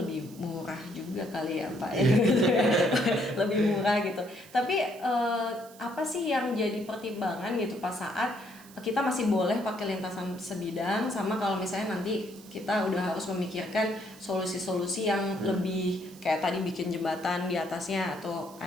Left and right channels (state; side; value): noise; right; hiss, 22 dB below the sound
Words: murah juga kali ya Pak ya. Lebih murah gitu. Tapi apa sih yang jadi pertimbangan gitu pas saat kita masih boleh pakai lintasan sebidang, sama kalau misalnya nanti kita udah harus memikirkan solusi-solusi yang lebih kayak tadi bikin jembatan di atasnya atau